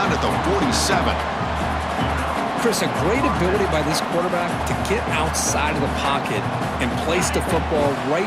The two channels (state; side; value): identical; both; correlation 1.00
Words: at the 47. Chris, a great ability by this quarterback to get outside of the pocket and place the football right